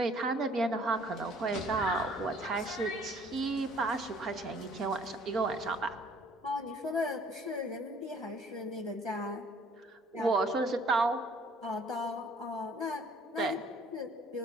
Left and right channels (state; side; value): normal; both; correlation 0.57